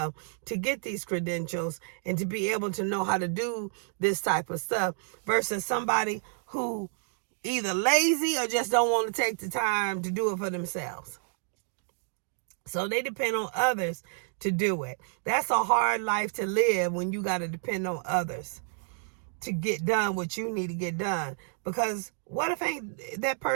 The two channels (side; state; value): left; silent; 58 dB below the other